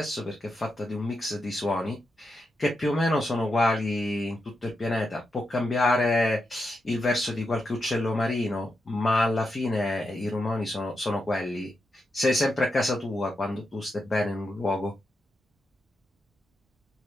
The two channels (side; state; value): both; normal; correlation 0.86